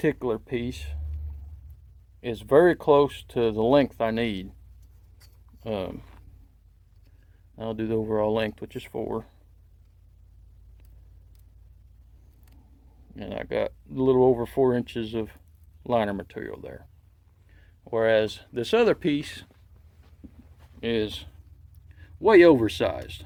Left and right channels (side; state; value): both; identical; correlation 1.00